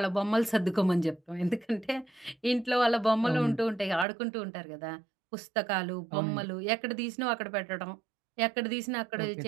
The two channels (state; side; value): drops out; left; at 4.0 s